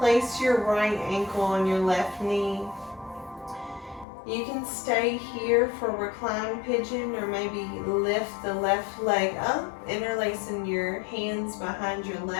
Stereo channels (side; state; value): right; drops out; at 4.0 s